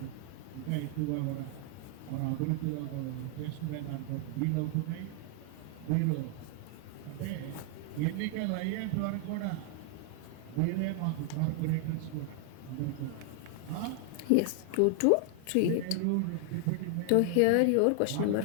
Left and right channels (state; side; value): different; both; correlation 0.00